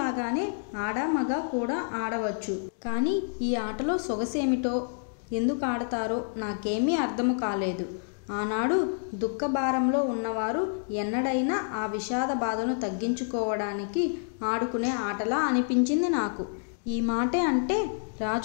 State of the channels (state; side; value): silent; right; digital silence